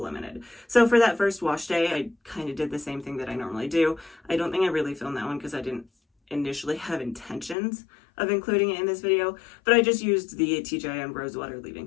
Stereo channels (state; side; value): drops out; right; at 7.6 s